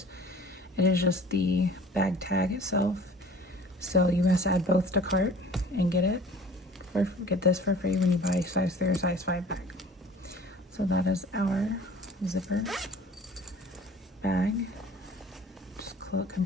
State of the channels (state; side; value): normal; both; correlation 0.47